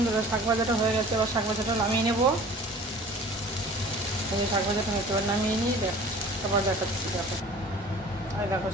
শাক ভাজাটা হয়ে গেছে, এবার শাক ভাজাটা নামিয়ে নেবো। এই শাক ভাজাটা হয়তো এবার নামিয়ে নিই, দেখ আবার দেখাচ্ছি। দেখো, আর দেখো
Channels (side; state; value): both; normal; correlation 0.45